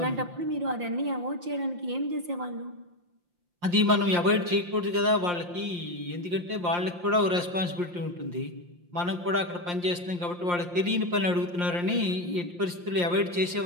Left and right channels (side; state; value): left; late; 5.7 ms